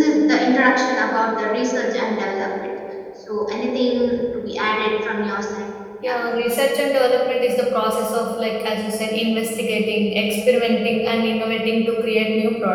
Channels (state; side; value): identical; both; correlation 1.00